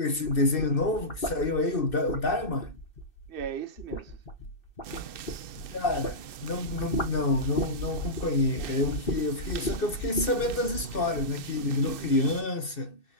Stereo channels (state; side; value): late; right; 2.6 ms